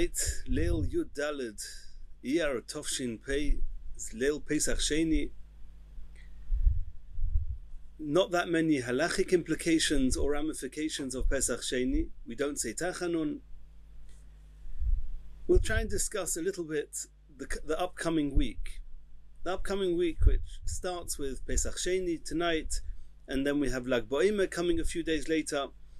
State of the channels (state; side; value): identical; both; correlation 1.00